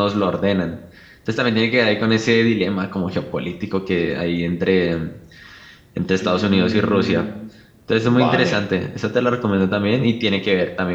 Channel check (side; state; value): both; identical; correlation 1.00